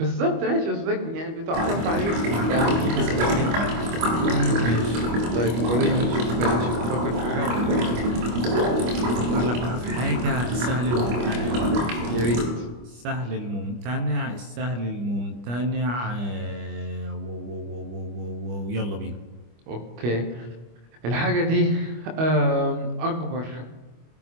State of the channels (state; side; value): late; left; 25 ms